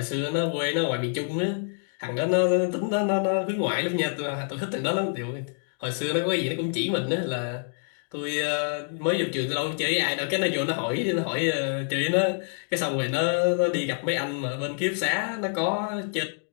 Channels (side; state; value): right; silent; 60 dB below the other